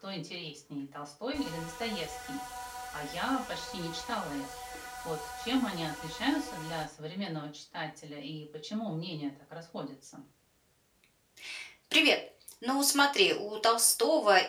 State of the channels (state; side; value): identical; both; correlation 1.00